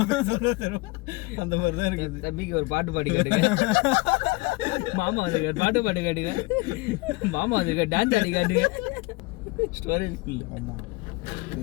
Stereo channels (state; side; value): quieter; right; 24.1 dB